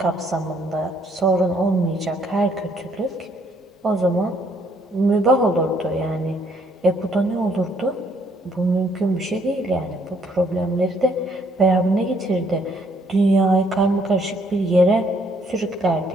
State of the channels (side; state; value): both; normal; correlation 0.67